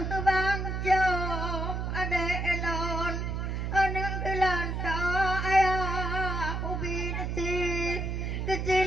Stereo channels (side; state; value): right; noise; hum, 2 dB below the sound